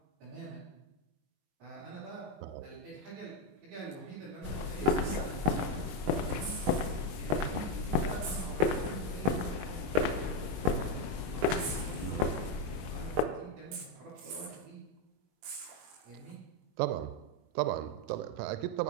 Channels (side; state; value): left; late; 21 ms